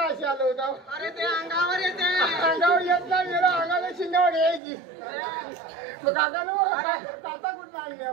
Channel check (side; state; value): left; drops out; at 4.6 s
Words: अशी आलं होतं अरे ते अंगावर येते अंगावर येत नाही गेला अंगाला शिंगावर यायची मग काकानो काका कुठं आणले